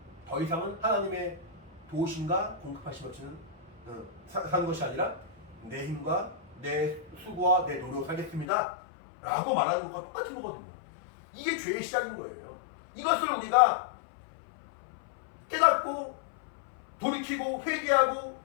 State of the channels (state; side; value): drops out; right; at 8.5 s